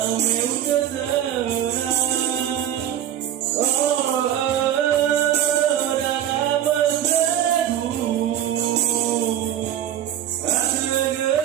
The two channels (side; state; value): left; quieter; 10.8 dB